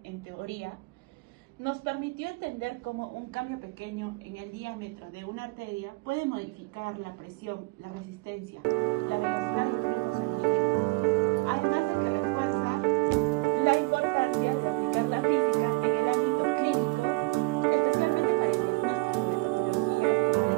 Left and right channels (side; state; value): left; quieter; 24.9 dB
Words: en teoría. Nos permitió entender cómo un cambio pequeño en el diámetro de una arteria puede modificar la presión, la resistencia, la velocidad del flujo sanguíneo, además de que